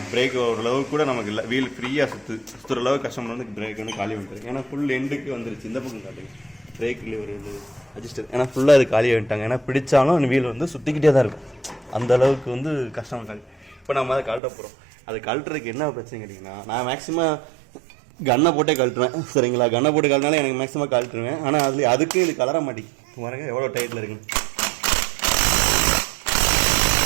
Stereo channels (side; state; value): left; drops out; at 14.4 s